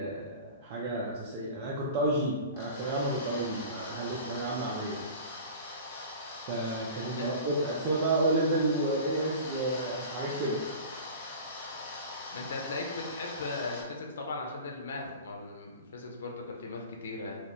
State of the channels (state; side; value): inverted; both; correlation -0.37